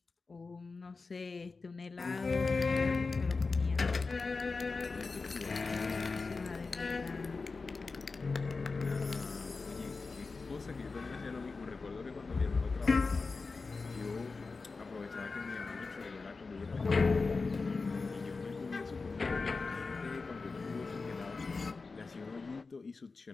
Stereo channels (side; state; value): right; quieter; 4.1 dB